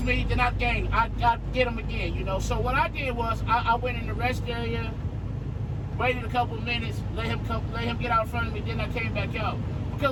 me, then I'd get him again, you know. So what I did was I went in the rest area, waited a couple minutes, let him get out in front of me, then I came back out.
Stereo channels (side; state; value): both; identical; correlation 1.00